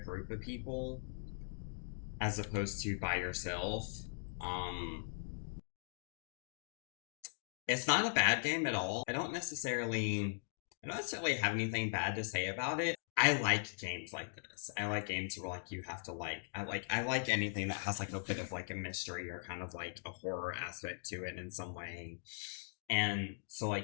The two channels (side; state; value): right; silent; digital silence